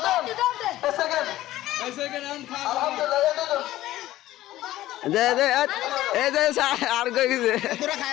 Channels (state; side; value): quieter; right; 15.1 dB